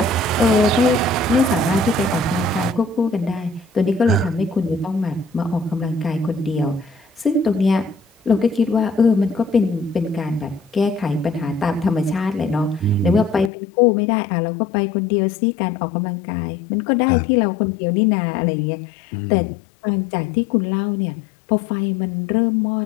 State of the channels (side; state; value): right; drops out; at 13.5 s